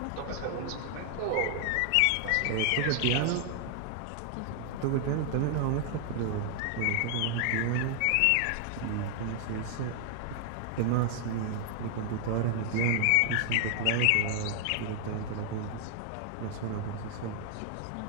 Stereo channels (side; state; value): both; different; correlation 0.00